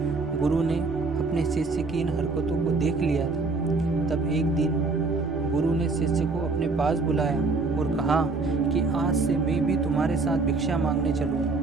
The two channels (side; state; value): left; quieter; 3.8 dB